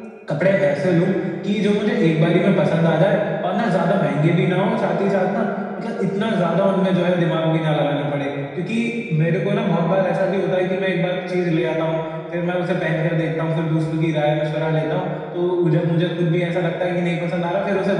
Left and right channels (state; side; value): identical; both; correlation 1.00